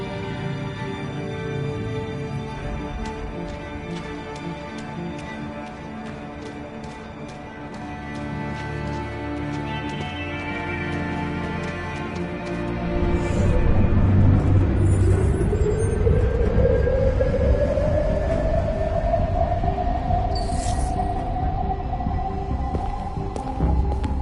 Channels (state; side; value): identical; both; correlation 1.00